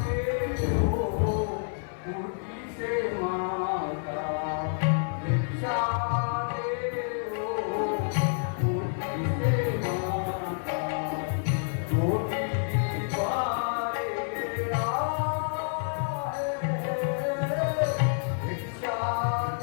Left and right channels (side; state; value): right; silent; 59 dB below the other